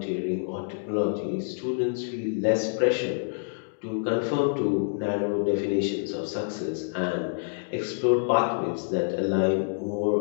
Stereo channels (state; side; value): silent; right; digital silence